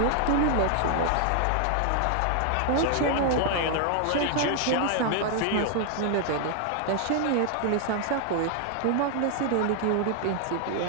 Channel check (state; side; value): different; both; correlation 0.00